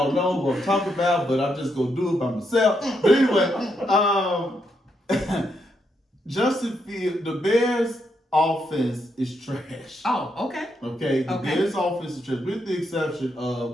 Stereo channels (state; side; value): normal; both; correlation 0.79